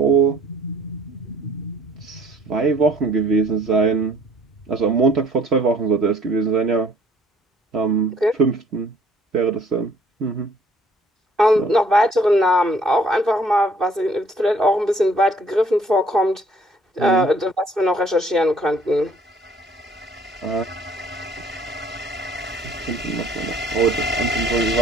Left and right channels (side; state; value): both; normal; correlation 0.58